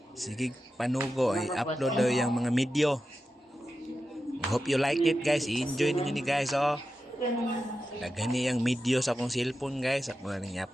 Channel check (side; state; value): both; normal; correlation 0.91